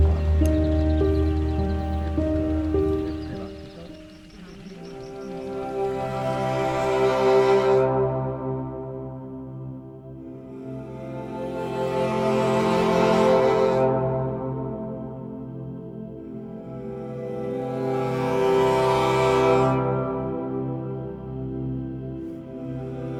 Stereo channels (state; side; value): identical; both; correlation 1.00